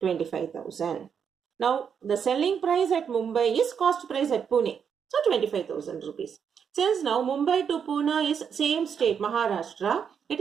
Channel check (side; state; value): left; quieter; 7.2 dB